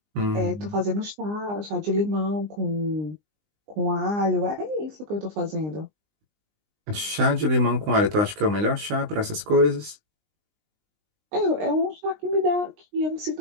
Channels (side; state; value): left; late; 19 ms